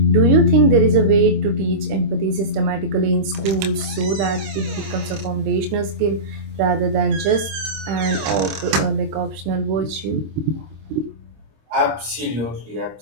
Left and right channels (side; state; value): left; late; 26 ms